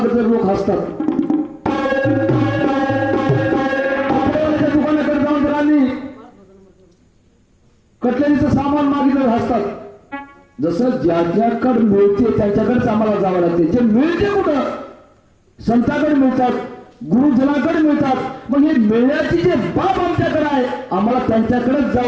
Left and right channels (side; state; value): both; identical; correlation 1.00